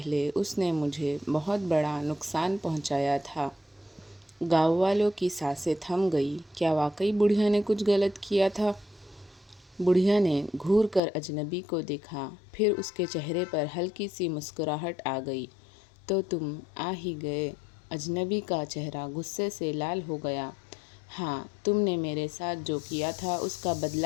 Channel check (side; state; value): right; drops out; at 11.0 s